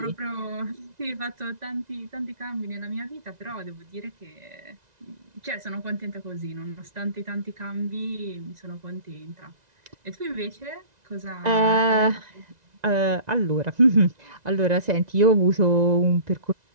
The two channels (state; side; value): late; left; 2.0 ms